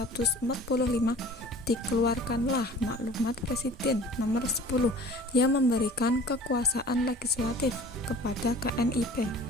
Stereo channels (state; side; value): normal; both; correlation 0.46